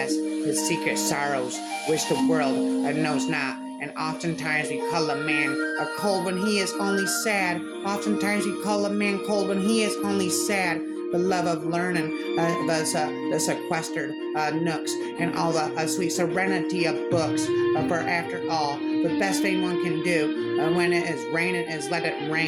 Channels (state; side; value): identical; both; correlation 1.00